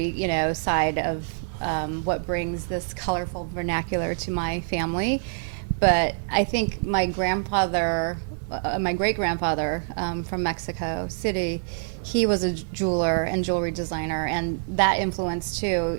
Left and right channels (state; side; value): silent; left; digital silence